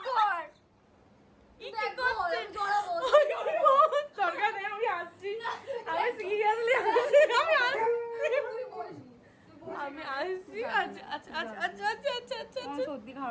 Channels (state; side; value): identical; both; correlation 1.00